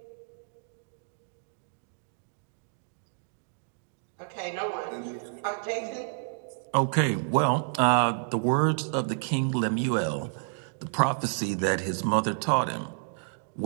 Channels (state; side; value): silent; left; digital silence